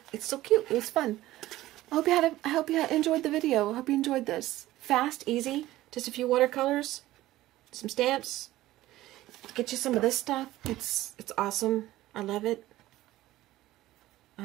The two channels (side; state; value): left; quieter; 15.9 dB